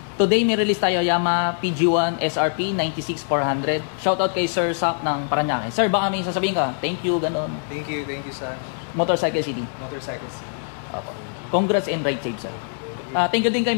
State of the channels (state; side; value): silent; right; digital silence